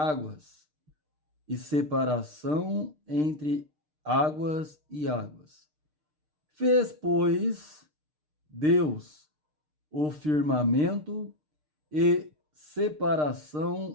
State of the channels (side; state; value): left; late; 6.6 ms